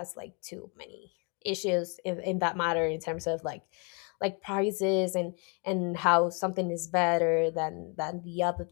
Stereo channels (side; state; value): right; quieter; 34.7 dB